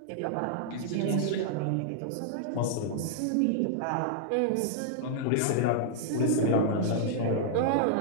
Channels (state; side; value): different; both; correlation -0.01